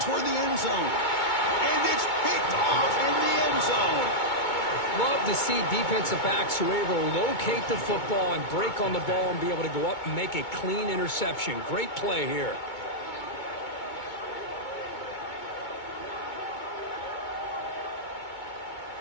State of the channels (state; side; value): late; right; 2.2 ms